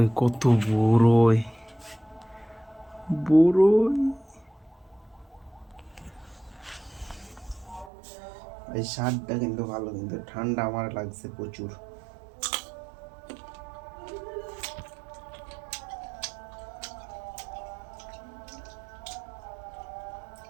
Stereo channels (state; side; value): drops out; left; at 7.9 s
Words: কত বড়ই, বড়ই এই স্বাদটা কিন্তু ভালো, কিন্তু ঠান্ডা আমার লাগছে প্রচুর।